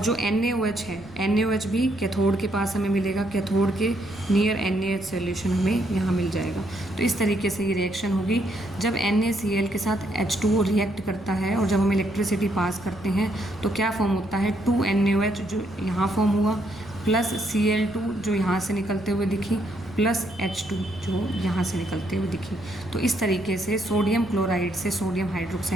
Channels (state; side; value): noise; right; rumble, 21 dB below the sound